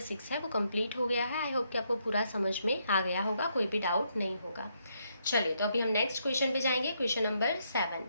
6 है वो कंप्लीट हो गया है। आई होप कि आपको पूरा समझ में आ गया होगा, कोई भी डाउट नहीं होगा। चलिए, तो अभी हम नेक्स्ट क्वेश्चन पे जाएंगे, question number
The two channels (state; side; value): inverted; both; correlation -0.76